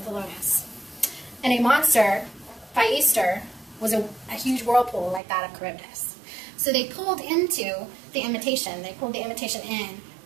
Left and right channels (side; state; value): left; drops out; at 5.2 s